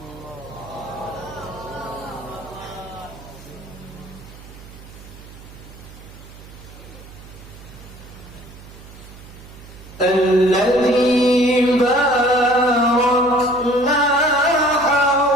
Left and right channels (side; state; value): right; noise; hum, 18 dB below the sound